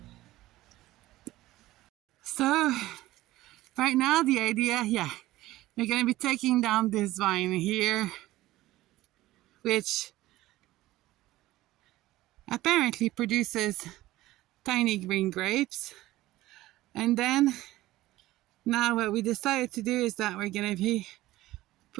So, right now the idea, we're going to be taking down this vine here, which apparently produces tiny green grapes. And then now what we decided to do is that we're going to be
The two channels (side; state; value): left; quieter; 16.6 dB